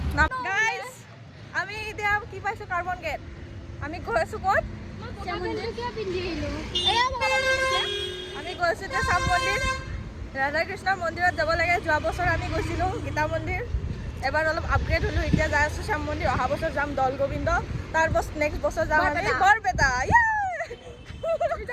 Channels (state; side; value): identical; both; correlation 1.00